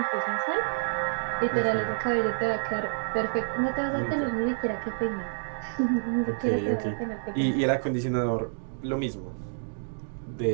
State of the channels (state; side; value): silent; left; digital silence